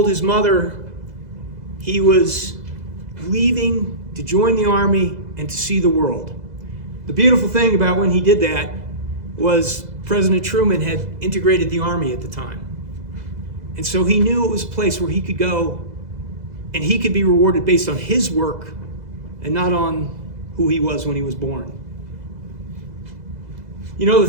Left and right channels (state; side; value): late; left; 2.0 ms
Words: his mother he was leaving to join the Army and to see the world. The beautiful thing about when he did that was President Truman had integrated the Army at the time. And so he knew it was a place where he could go and he could be rewarded based on his work and not on who he was when he was born. You know, the